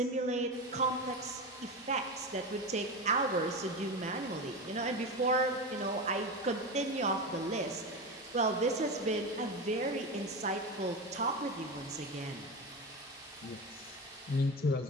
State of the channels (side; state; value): both; normal; correlation 0.21